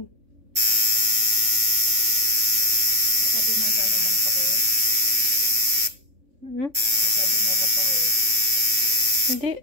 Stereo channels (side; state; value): left; late; 3.5 ms